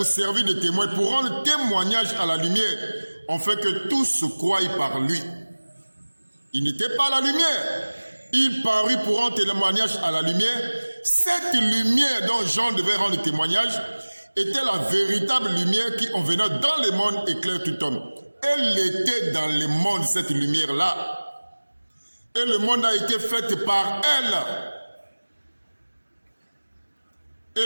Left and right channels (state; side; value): inverted; both; correlation -1.00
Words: servir de témoin, pour rendre témoignage à la lumière, afin que tous se croient par lui. Il n'était pas la lumière. Il parut pour rendre témoignage à la lumière. Cette lumière dont Jean devait rendre témoignage était la véritable lumière qui, en venant dans le monde, éclaire tout homme. Elle était dans le monde, cette lumière-là. Et le monde a été fait par elle. Et